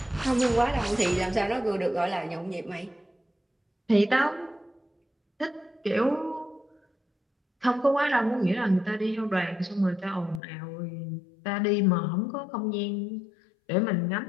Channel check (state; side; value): drops out; right; at 10.4 s